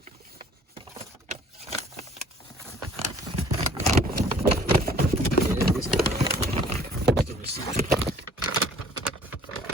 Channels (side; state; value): both; normal; correlation 0.55